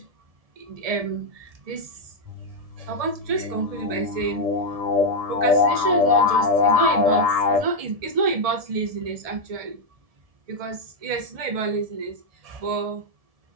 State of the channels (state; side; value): late; left; 1.7 ms